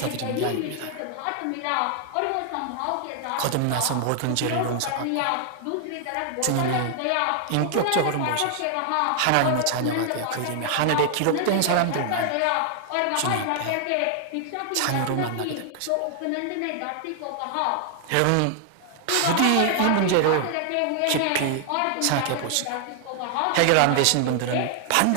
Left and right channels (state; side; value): different; both; correlation 0.00